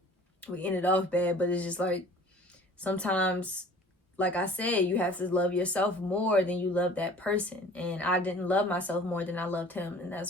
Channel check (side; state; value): both; normal; correlation 0.47